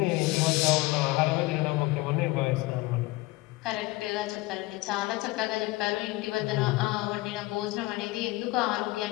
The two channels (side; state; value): right; quieter; 20.3 dB